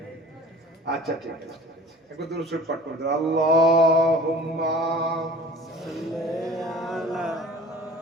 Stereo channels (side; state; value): both; normal; correlation 0.44